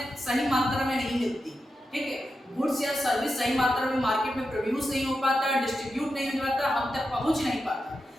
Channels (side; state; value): both; normal; correlation 0.89